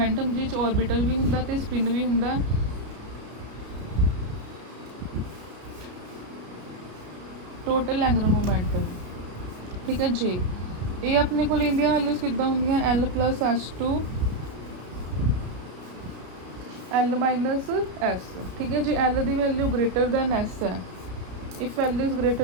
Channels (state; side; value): late; left; 33 ms